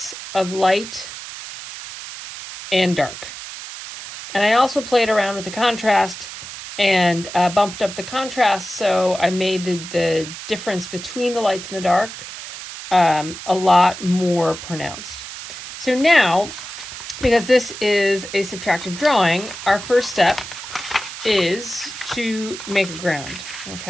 of light and dark. And I also played around with the contrast and bumped up the contrast, so I made the difference between the lights and the dark a lot more pronounced. So now, because this is a subtractive drawing, our first step is to make a ground,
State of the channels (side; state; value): right; noise; hiss, 11 dB below the sound